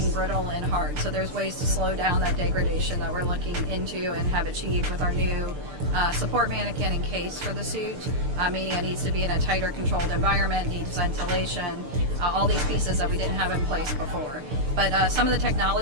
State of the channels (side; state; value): left; late; 6.7 ms